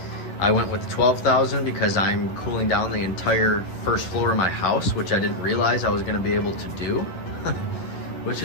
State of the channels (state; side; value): late; right; 11 ms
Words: I went with the 12,000 because I'm cooling down the entire first floor of my house, which I didn't realize I was going to be able to do. Which